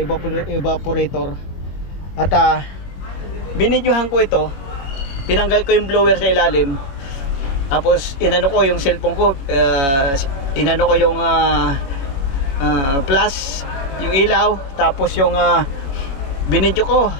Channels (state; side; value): late; right; 21 ms